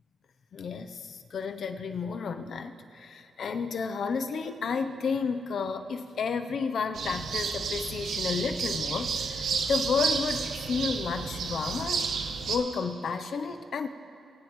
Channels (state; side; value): normal; both; correlation 0.77